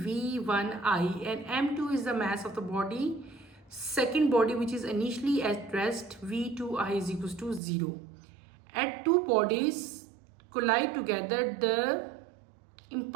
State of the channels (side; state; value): left; drops out; at 7.6 s